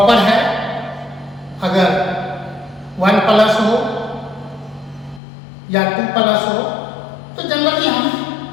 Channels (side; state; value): right; drops out; at 5.2 s